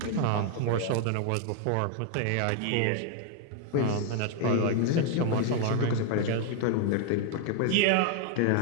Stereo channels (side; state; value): both; different; correlation 0.00